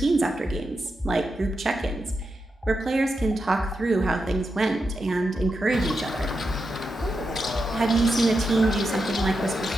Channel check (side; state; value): both; normal; correlation 0.87